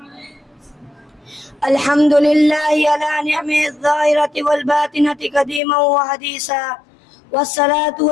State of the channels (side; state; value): right; drops out; at 5.6 s